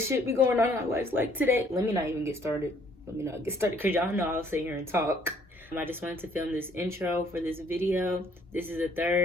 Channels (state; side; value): normal; both; correlation 0.62